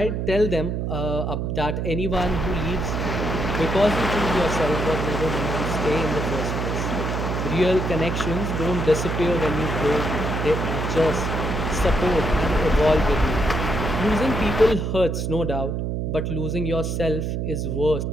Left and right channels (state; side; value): noise; right; hum, 1 dB below the sound